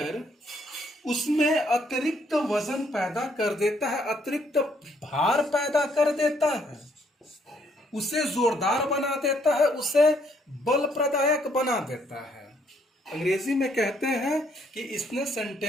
उसमें अतिरिक्त वजन पैदा कर देता है, अतिरिक्त भार पैदा कर देता है, उसे जोरदार बना देता है, उसे बल प्रदायक बना देता है। अंग्रेजी में कहते हैं कि इसने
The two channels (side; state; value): both; normal; correlation 0.69